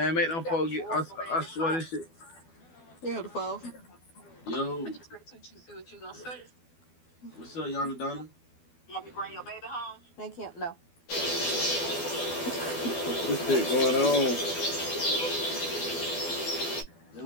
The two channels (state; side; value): late; right; 12 ms